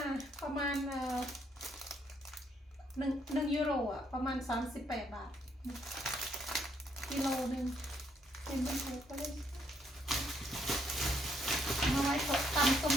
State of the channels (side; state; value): both; normal; correlation 0.73